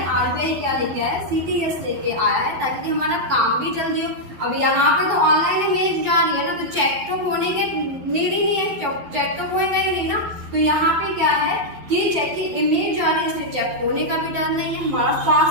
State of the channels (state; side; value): late; left; 11 ms